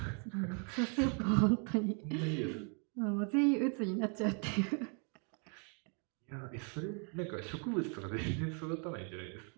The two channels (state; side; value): quieter; left; 39.0 dB